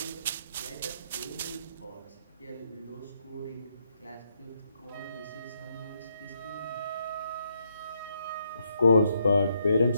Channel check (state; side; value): inverted; both; correlation -0.76